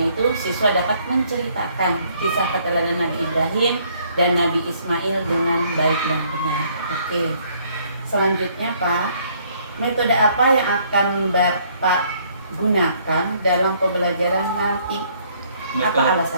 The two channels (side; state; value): both; inverted; correlation -0.64